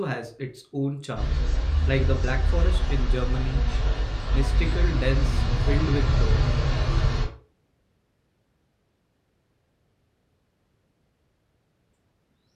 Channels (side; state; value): both; identical; correlation 1.00